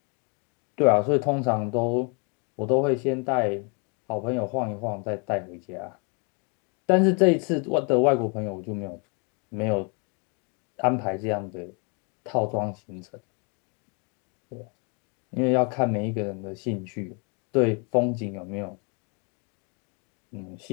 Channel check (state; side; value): quieter; right; 35.4 dB